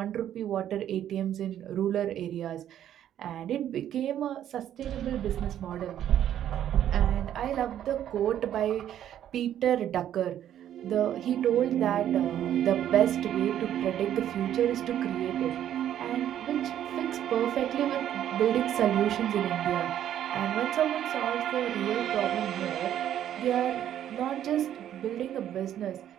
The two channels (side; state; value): left; quieter; 10.9 dB